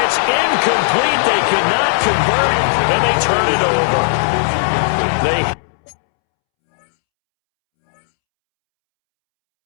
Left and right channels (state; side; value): silent; right; 70 dB below the other